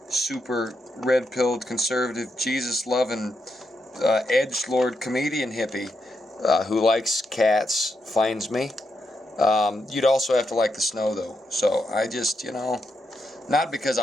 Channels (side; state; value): both; normal; correlation 0.83